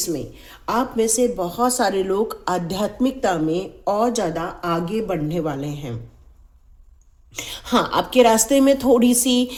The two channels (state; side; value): identical; both; correlation 1.00